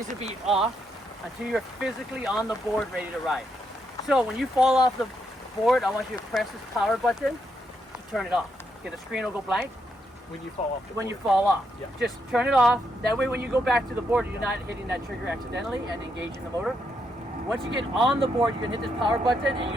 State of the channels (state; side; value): normal; both; correlation 0.79